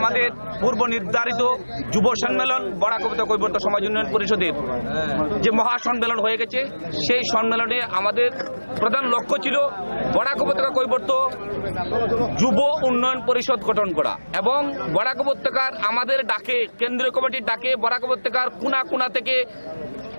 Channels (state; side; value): inverted; both; correlation -1.00